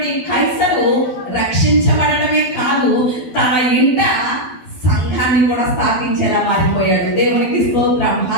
కైసరు రక్షించబడటమే కాదు, తన ఇంట సంఘాన్ని కూడా స్థాపించేలా మారిపోయాడు. దేవునికి స్తోత్రం,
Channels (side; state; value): right; late; 12 ms